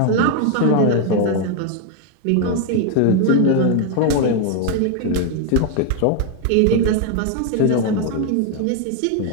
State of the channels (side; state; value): both; different; correlation 0.00